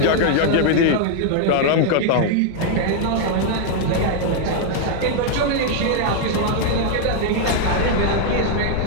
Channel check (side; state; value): both; different; correlation 0.00